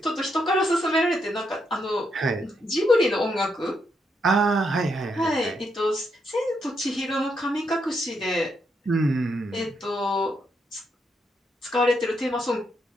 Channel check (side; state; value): both; normal; correlation 0.79